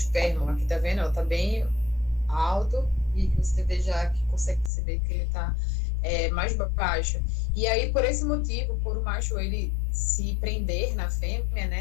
Aqui tá vendo, ó, tá bem alto, e você vê já que consegue perceber que ele tá mais baixo. E aí, por esse motivo, por o macho ele se prender na fêmea,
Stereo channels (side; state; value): right; drops out; at 4.7 s